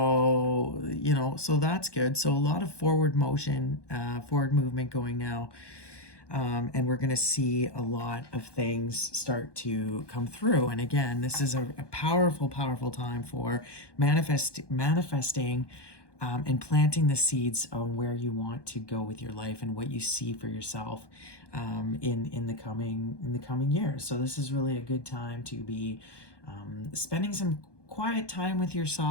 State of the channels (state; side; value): late; right; 1.2 ms